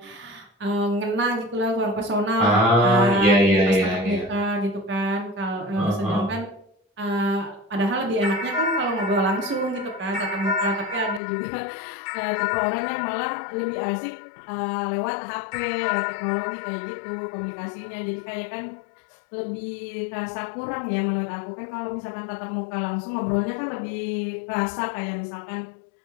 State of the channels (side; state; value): right; drops out; at 11.2 s